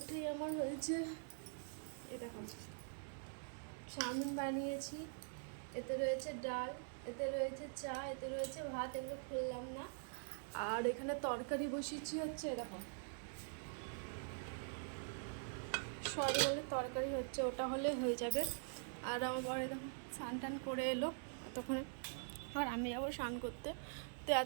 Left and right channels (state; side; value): silent; left; digital silence